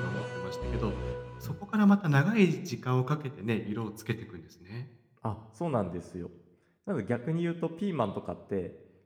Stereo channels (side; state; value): both; identical; correlation 1.00